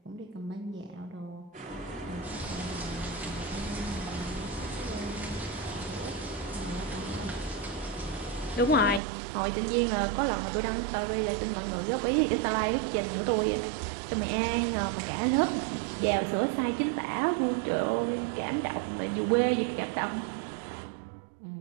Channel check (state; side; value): drops out; left; at 9.0 s